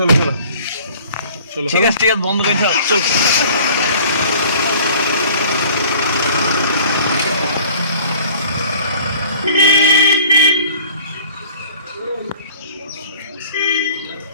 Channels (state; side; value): inverted; both; correlation -0.48